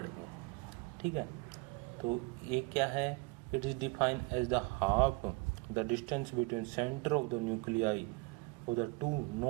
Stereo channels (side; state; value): left; quieter; 27.3 dB